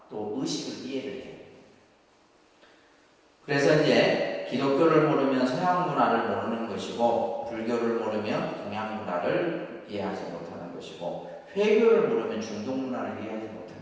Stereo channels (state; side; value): identical; both; correlation 1.00